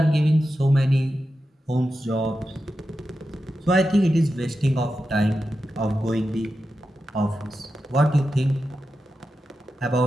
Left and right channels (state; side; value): normal; both; correlation 0.90